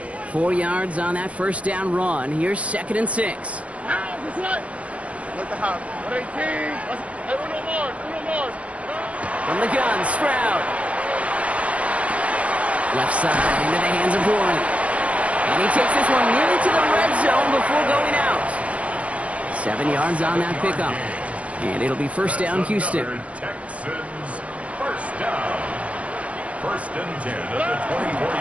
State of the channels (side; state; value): left; late; 0.064 ms